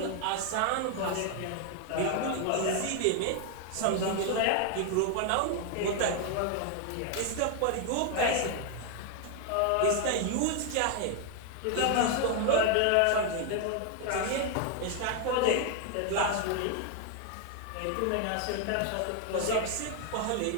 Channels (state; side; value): different; both; correlation 0.01